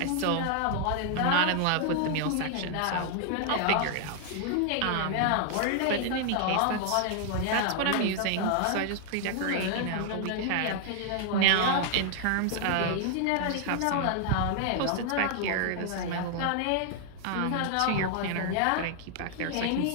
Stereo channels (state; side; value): different; both; correlation 0.00